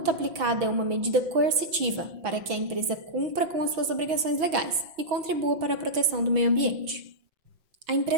aplicada é uma medida coercitiva para que a empresa cumpra com as suas obrigações legais e contribua para a proteção do meio ambiente. A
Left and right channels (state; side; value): late; left; 6.1 ms